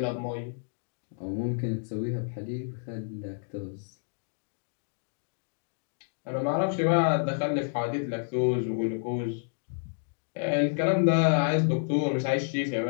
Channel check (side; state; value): right; silent; digital silence